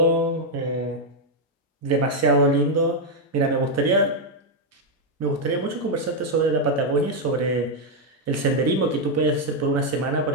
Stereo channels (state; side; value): normal; both; correlation 0.00